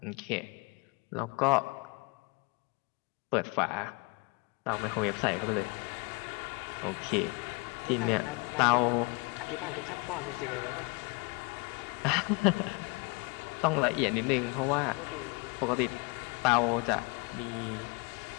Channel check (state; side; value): quieter; right; 29.0 dB